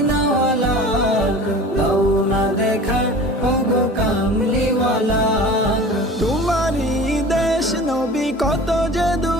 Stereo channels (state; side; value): normal; both; correlation 0.39